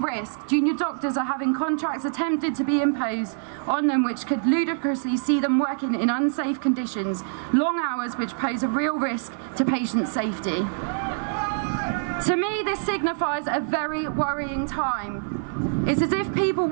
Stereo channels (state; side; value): silent; left; 62 dB below the other